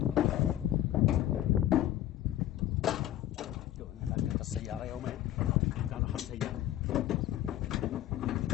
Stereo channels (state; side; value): quieter; right; 13.0 dB